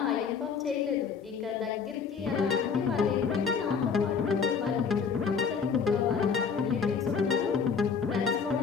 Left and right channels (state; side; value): quieter; right; 6.0 dB